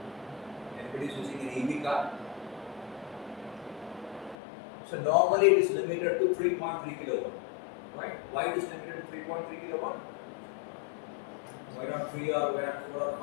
Anybody is using an EV car? So normally it is limited to 3.3 kilowatt, right? Why it is limited to 3.3 kilowatt? Why not 3 or why not 4 or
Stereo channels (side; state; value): right; drops out; at 4.4 s